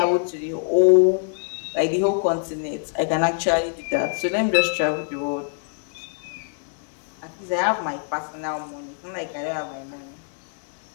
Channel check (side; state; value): right; silent; digital silence